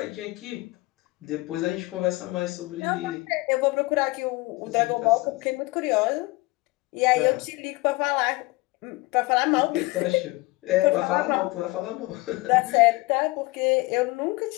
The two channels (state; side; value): quieter; right; 22.5 dB